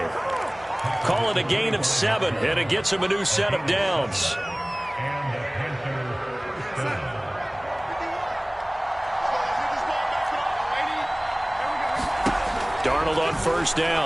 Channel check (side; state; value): left; noise; hum, 25 dB below the sound